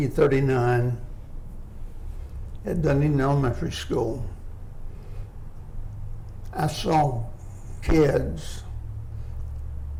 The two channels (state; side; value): identical; both; correlation 1.00